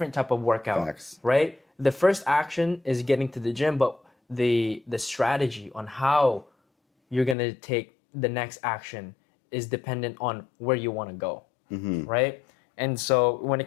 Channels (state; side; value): drops out; right; at 7.4 s